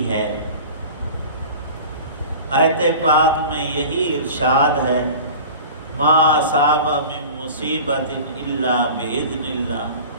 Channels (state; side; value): inverted; both; correlation -0.38